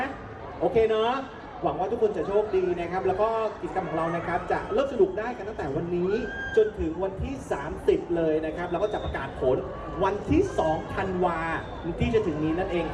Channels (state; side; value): identical; both; correlation 1.00